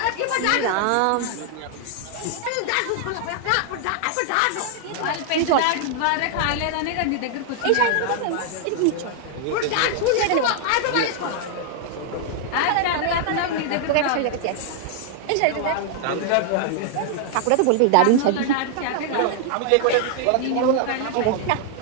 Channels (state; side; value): different; both; correlation 0.00